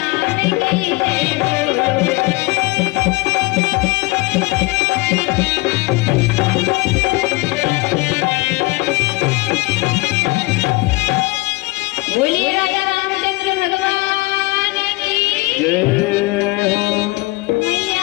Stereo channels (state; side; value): quieter; right; 23.2 dB